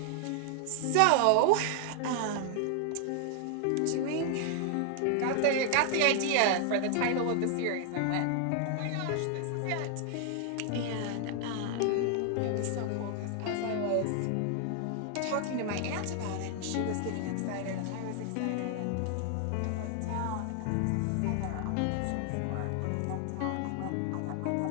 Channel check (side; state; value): both; different; correlation 0.00